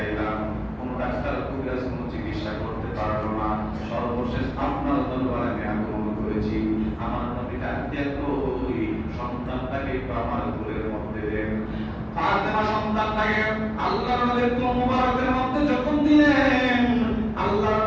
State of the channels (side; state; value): both; identical; correlation 1.00